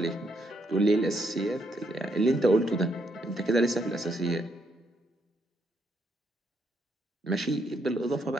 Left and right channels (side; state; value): both; normal; correlation 0.75